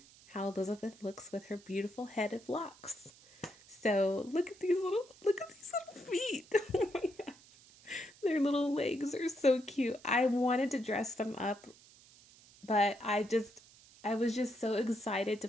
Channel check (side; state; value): right; noise; hiss, 24 dB below the sound